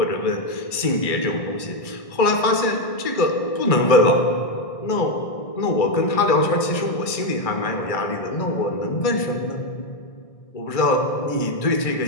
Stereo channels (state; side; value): late; right; 1.6 ms